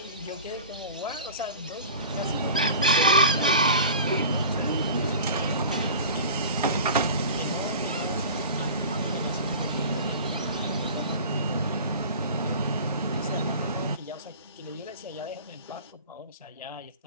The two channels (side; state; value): both; inverted; correlation -0.37